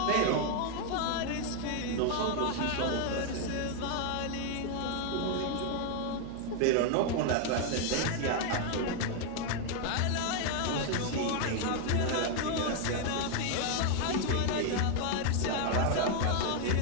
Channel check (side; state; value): both; different; correlation 0.01